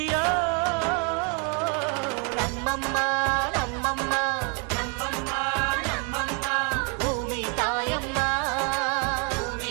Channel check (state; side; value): quieter; left; 36.1 dB